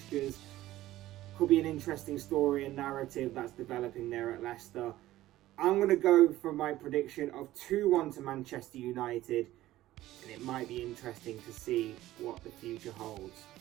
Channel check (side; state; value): left; quieter; 15.3 dB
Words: Could be an interesting story and narrative that's developing there at Leicester. I'm going to go for my prediction of 2-1 to Manchester United. And it might be interesting to see what the future holds